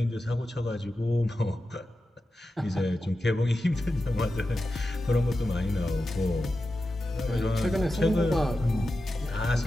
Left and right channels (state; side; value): normal; both; correlation 0.91